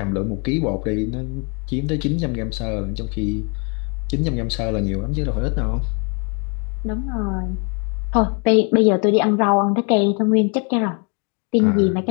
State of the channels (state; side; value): quieter; right; 35.1 dB